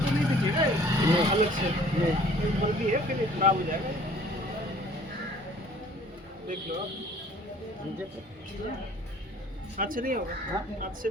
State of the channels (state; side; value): normal; both; correlation 0.54